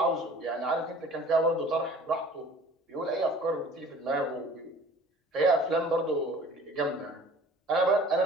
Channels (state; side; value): normal; both; correlation 0.48